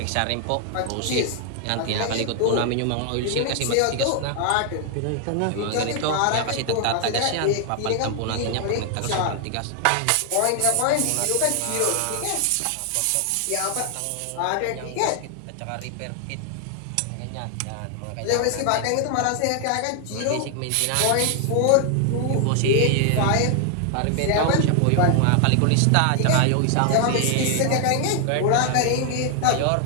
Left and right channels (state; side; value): different; both; correlation 0.00